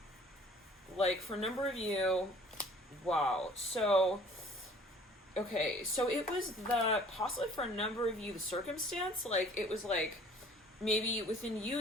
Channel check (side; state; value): both; normal; correlation 0.53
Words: Like for a number of you, wow. So, okay, so it was possibly for a number of you, the circumstance, like it was like maybe within you,